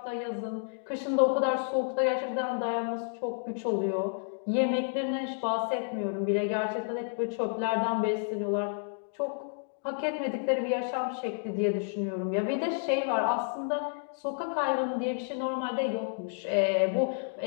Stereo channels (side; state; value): right; silent; digital silence